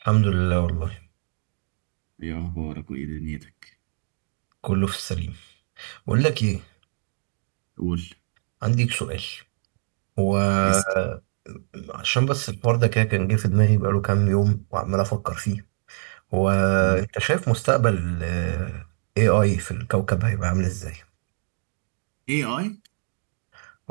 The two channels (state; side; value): silent; left; digital silence